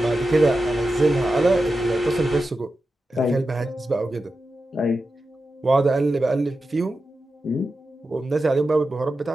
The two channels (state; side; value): normal; both; correlation 0.91